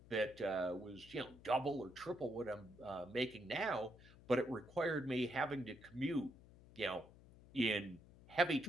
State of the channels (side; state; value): left; noise; hum, 21 dB below the sound